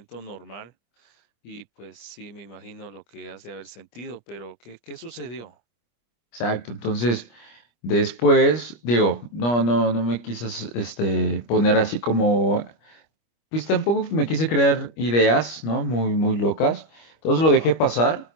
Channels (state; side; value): late; right; 25 ms